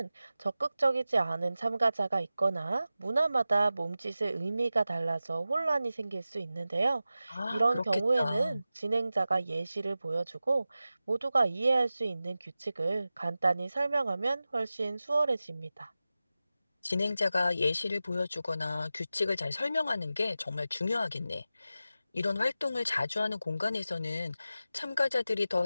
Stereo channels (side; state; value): both; inverted; correlation -0.94